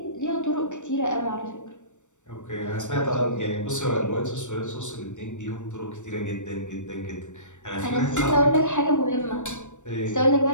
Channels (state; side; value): late; right; 0.85 ms